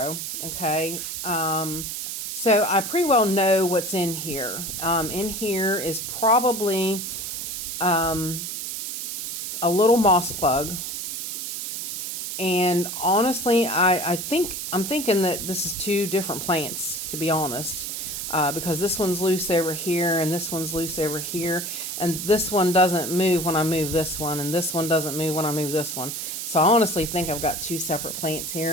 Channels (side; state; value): right; noise; hiss, 5 dB below the sound